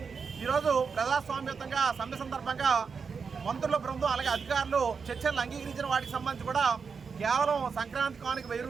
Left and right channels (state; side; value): quieter; left; 5.6 dB